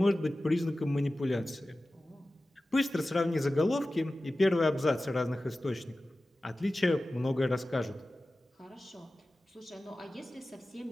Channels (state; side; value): normal; both; correlation 0.95